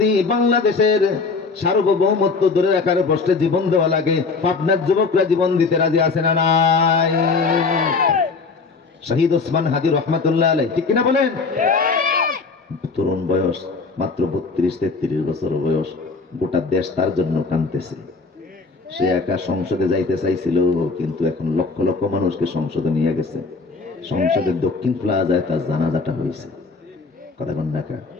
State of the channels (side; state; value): right; quieter; 4.3 dB